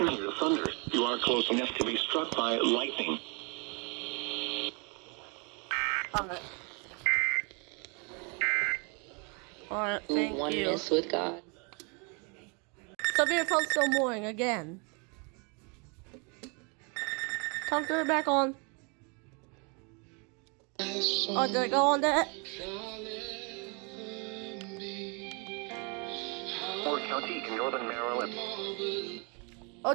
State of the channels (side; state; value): left; quieter; 33.2 dB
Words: hear thunder, you are close enough to be struck by lightning. Alright, thank you. Oneness with God. Severe thunderstorm warning again. Time to turn it back on. Oh, did I go on that? Ford County in northern Maryland. Oh,